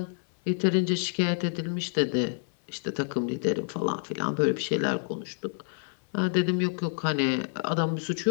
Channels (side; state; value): right; silent; 59 dB below the other